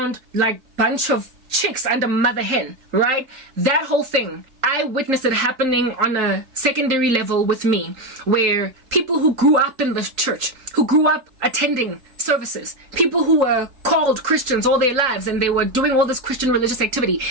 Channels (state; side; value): late; left; 3.8 ms